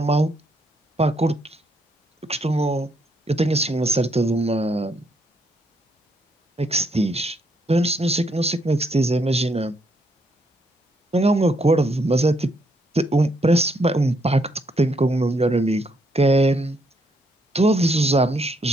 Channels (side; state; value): both; normal; correlation 0.74